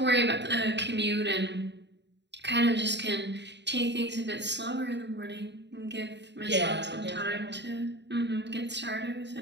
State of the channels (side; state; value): left; late; 0.51 ms